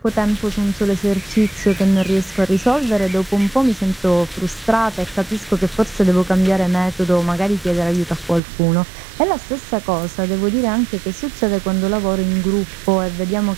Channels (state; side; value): drops out; left; at 8.4 s